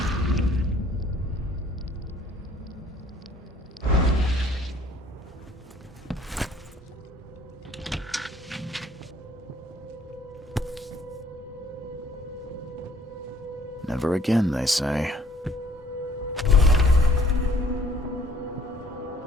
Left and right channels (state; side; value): normal; both; correlation 0.59